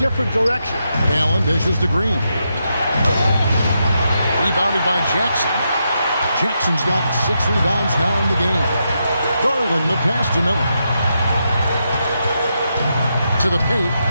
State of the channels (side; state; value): both; inverted; correlation -0.83